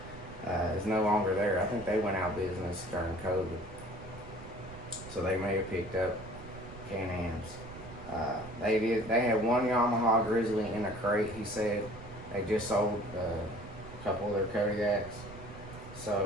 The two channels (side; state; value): right; noise; rumble, 15 dB below the sound